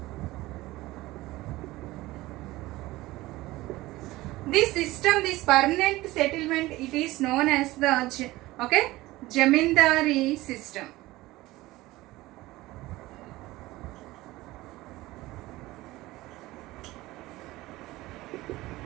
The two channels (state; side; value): quieter; left; 18.5 dB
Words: This system, this permanent settlement, it is known as the Jamindari system.